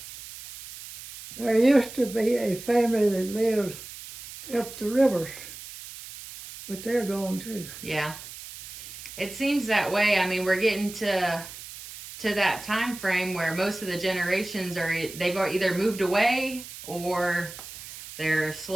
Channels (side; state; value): right; noise; hiss, 13 dB below the sound